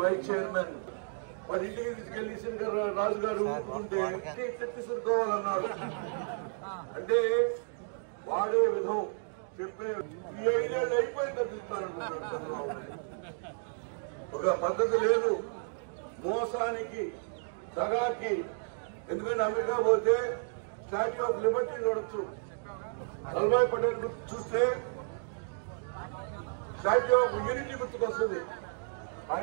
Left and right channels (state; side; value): silent; left; digital silence